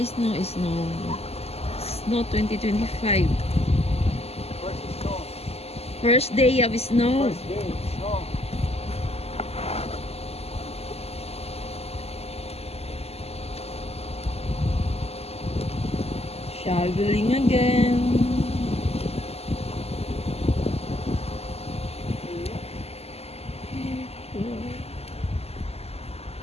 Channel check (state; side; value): late; right; 0.29 ms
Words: snow, snow. Snow 2025. First day of snow. First day, snow. Shoveling again.